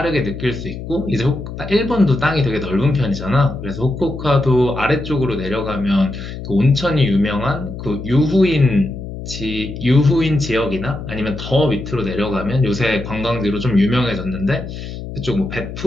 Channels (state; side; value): noise; left; hum, 9 dB below the sound